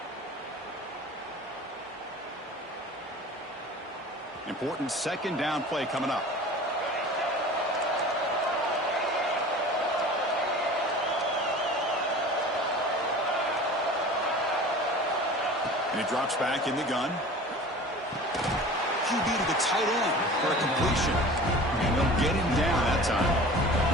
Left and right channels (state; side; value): normal; both; correlation 0.40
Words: important second down play coming up. And he drops back in the gun. QB to the tight end for a completion. And they'll get him down that time.